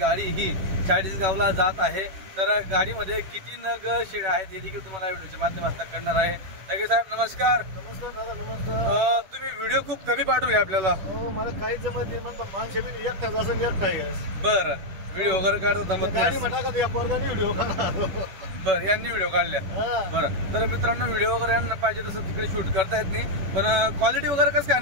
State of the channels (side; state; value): left; late; 11 ms